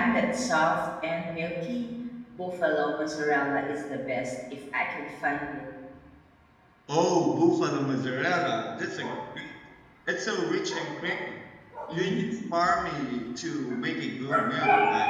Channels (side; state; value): both; identical; correlation 1.00